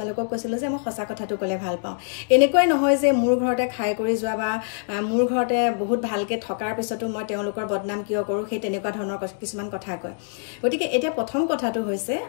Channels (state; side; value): silent; right; digital silence